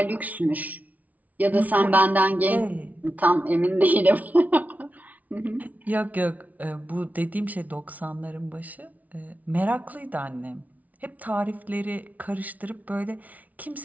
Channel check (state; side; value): late; left; 0.073 ms